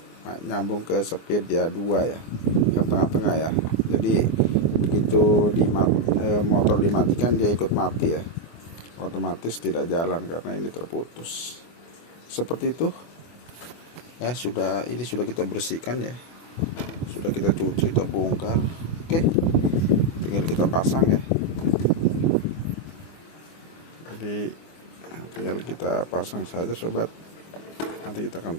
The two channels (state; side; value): late; right; 24 ms